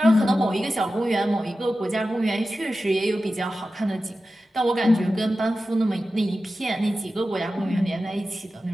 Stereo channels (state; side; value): normal; both; correlation 0.93